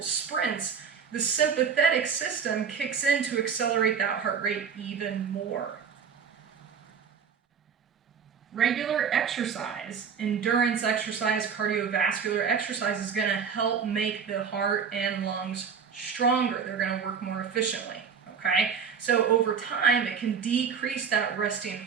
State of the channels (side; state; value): left; quieter; 6.5 dB